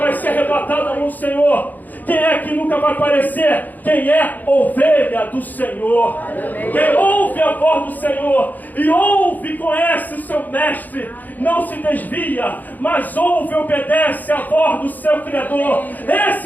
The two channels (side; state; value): right; late; 0.083 ms